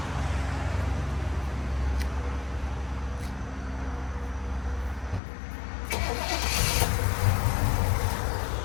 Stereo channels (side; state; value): right; drops out; at 5.2 s